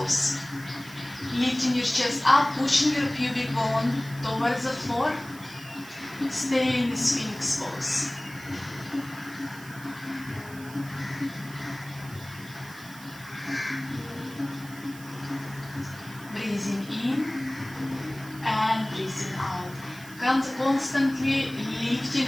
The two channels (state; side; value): noise; right; hiss, 18 dB below the sound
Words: Lifting your chest up, pushing your pubic bone towards the floor. Stay in the Sphinx pose. Breathing in and breathing out. Constantly lifting